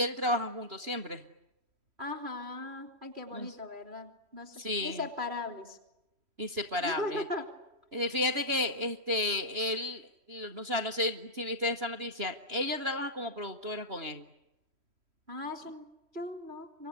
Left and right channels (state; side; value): late; left; 2.9 ms